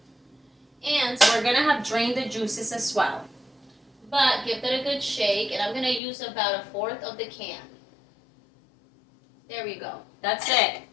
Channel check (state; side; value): drops out; right; at 6.0 s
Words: And we're going to have drained the juices as well. But give that a good shake, and I'm going to use about 1/4 of the can. There we go. That's it.